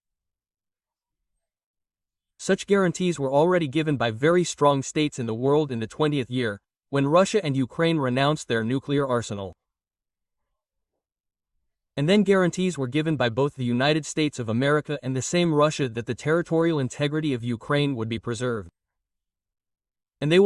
Such guarantees were already given by very strong states in the world in the 20th year, when Russia and Ukraine renounced their nuclear arsenal. And then guarantees were given by both the United States of America and the same Russia that the territorial integrity of Ukraine would be preserved. And they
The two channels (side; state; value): both; identical; correlation 1.00